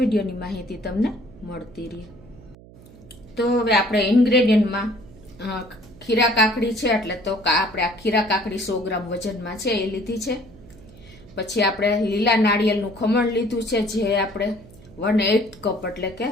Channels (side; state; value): right; noise; hum, 21 dB below the sound